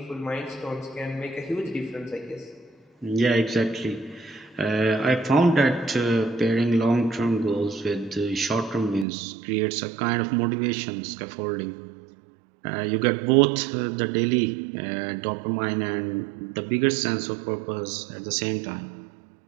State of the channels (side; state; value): left; drops out; at 9.1 s